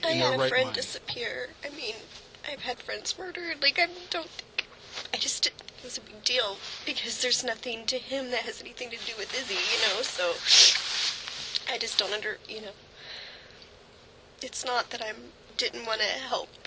I their had a right friend mind. disappear. I mean, I've had friends murdered. Like, I just didn't think it was a big deal because there's nothing to him that has anything to do with Izzy, so I just don't it's not that I didn't want to help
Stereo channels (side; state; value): both; identical; correlation 1.00